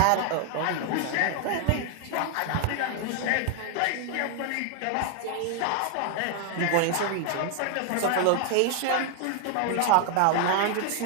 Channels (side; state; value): both; different; correlation 0.00